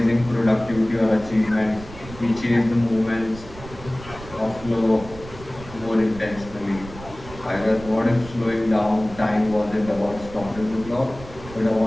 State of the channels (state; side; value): noise; right; rumble, 16 dB below the sound